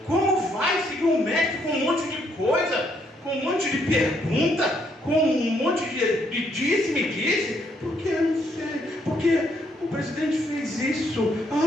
Como vai seguir um mestre com um monte de coisa, com um monte de pergunta, com um monte de disse-me-disse? Porque eu não sei, porque o presidente fez isso,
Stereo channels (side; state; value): both; normal; correlation 0.72